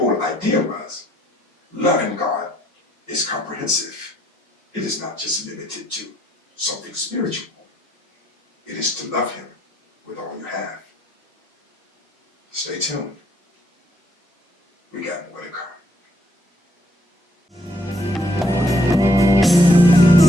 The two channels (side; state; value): both; normal; correlation 0.70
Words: idea was, loving God is comprehensive. It is not just limited to something spiritual. It is to love him with all you have. Stay tuned. We got more to come.